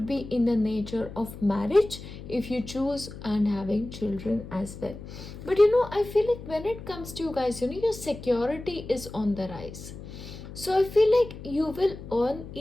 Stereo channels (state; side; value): noise; left; hum, 13 dB below the sound